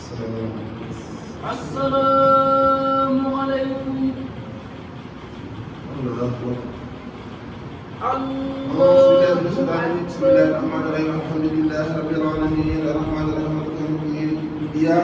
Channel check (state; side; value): identical; both; correlation 1.00